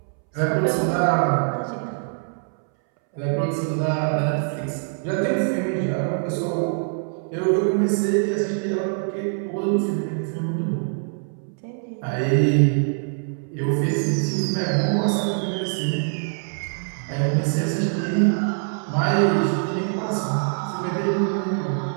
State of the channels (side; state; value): left; silent; 63 dB below the other